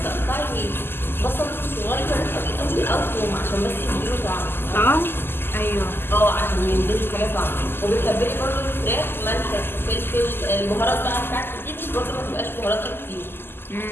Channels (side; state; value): right; late; 0.11 ms